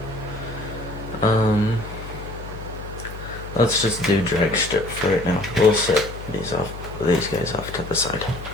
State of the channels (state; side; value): noise; left; hum, 11 dB below the sound